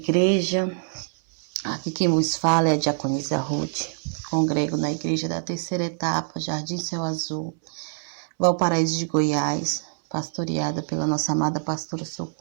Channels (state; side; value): silent; left; 62 dB below the other